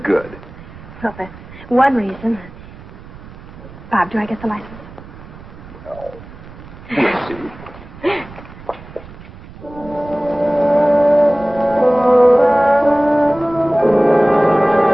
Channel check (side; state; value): right; noise; rumble, 18 dB below the sound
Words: good. Well, that's one reason. Bob, do I get the license? No. We'll see.